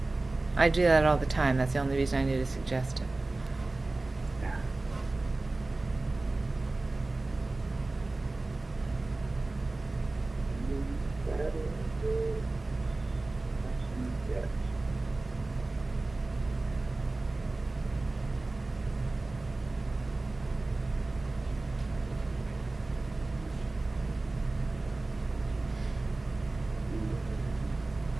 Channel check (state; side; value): quieter; left; 3.1 dB